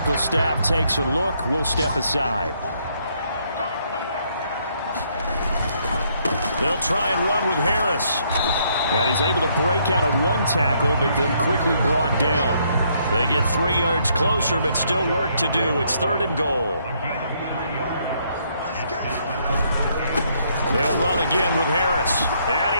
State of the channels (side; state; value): both; inverted; correlation -0.70